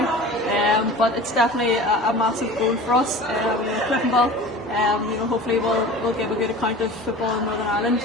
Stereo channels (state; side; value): normal; both; correlation 0.38